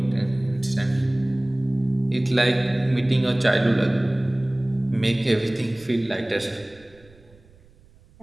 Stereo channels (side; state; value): right; noise; rumble, 28 dB below the sound